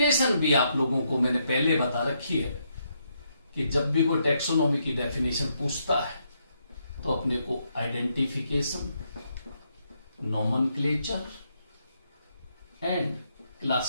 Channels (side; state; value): both; inverted; correlation -0.77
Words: भी आप लोगों को मैंने पहले बता रखी है कि जब भी कोई टैक्सोनॉमी की डेफिनेशन पूछता है तो अपने को आइडेंटिफिकेशन, नोमेनक्लेचर एंड